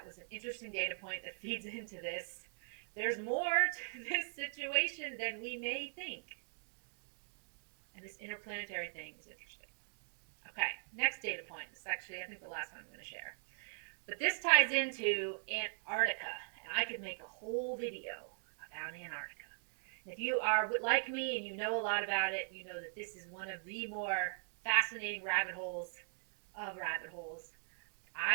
was an interesting data point that feeds into this. There's more to this situation than we may think. And this interplanetary thing is interesting. Okay, next data point. This is actually, I think, the last one I'm going to share. But this ties into Antarctica. And I could make a whole video about Antarctica. And if you are like me and you know a lot about it, you know that this is one of the more fascinating rabbit holes of rabbit holes.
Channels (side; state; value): left; silent; digital silence